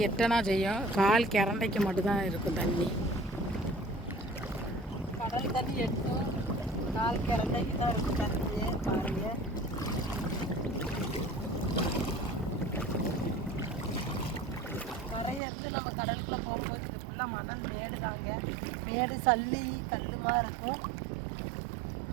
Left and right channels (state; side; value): drops out; left; at 15.4 s